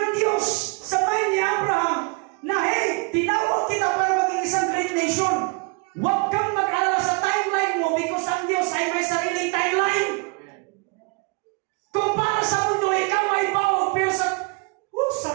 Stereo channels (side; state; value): left; quieter; 32.4 dB